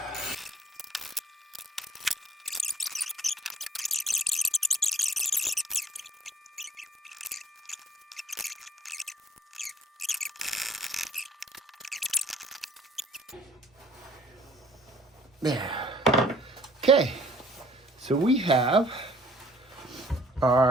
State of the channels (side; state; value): both; normal; correlation 0.58